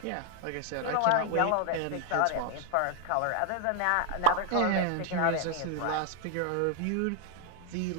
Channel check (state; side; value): different; both; correlation 0.00